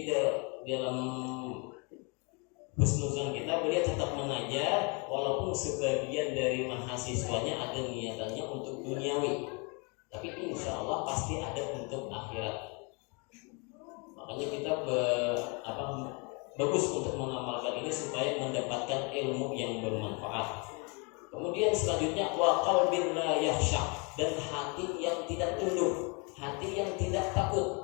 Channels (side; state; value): right; quieter; 32.7 dB